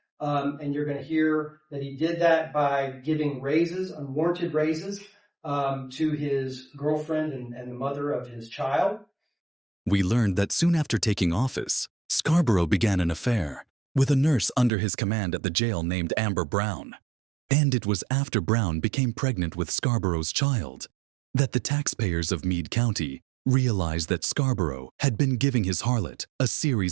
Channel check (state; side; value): drops out; left; at 14.7 s